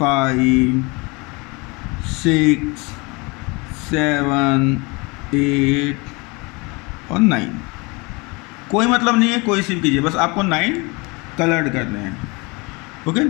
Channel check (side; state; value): right; quieter; 27.3 dB